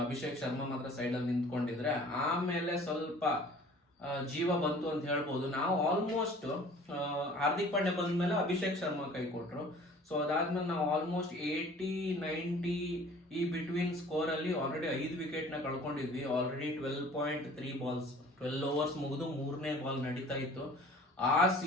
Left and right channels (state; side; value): normal; both; correlation 0.49